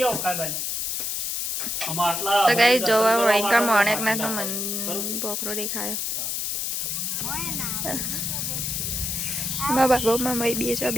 ખાઈ તો કઈ જોવા વૈકા મણેકનાથ નો બકરો દેખાયો મારા બાબા મામા બે છો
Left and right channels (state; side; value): noise; left; hiss, 1 dB below the sound